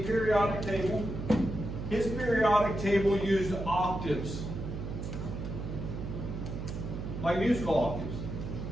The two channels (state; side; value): noise; right; hum, 6 dB below the sound